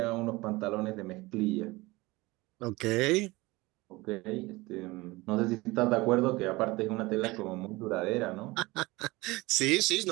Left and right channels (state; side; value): quieter; left; 21.6 dB